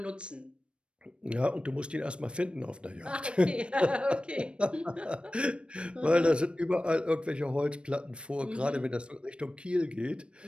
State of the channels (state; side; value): late; left; 0.058 ms